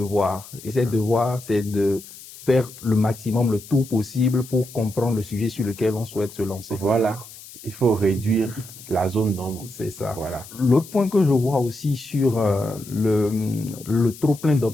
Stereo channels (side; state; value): left; noise; hiss, 17 dB below the sound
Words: Et ses devoirs, c'est de faire le maximum, le tout possible pour comprendre le sujet sur lequel on souhaite se lancer. Voilà. Il faut réduire la zone d'ombre. C'est ça. Voilà. L'autre point que je vois aussi sur le trop plein